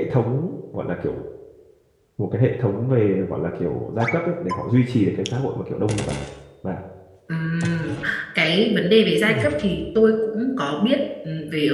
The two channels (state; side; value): identical; both; correlation 1.00